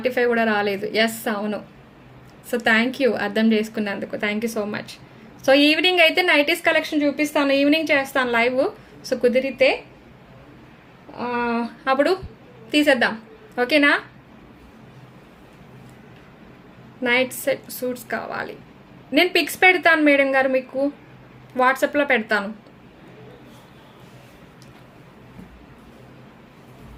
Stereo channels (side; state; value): both; identical; correlation 1.00